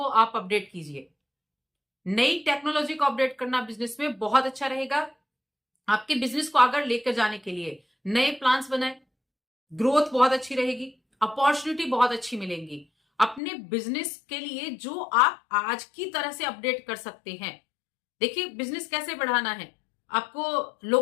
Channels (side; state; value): right; drops out; at 13.4 s